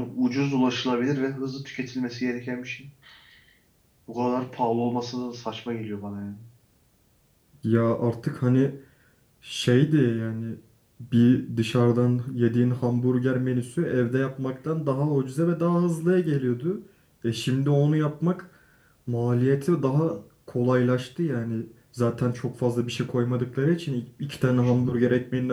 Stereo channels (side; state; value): both; identical; correlation 1.00